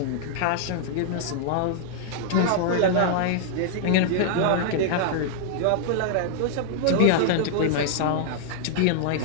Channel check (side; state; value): both; different; correlation -0.01